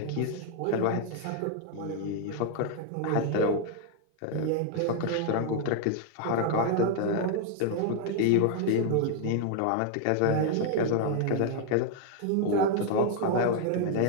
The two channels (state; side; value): different; both; correlation 0.00